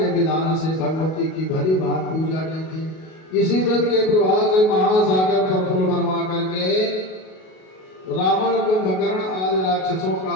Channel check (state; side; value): late; right; 38 ms